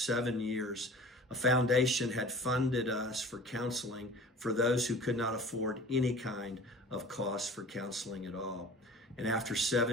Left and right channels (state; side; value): normal; both; correlation 0.42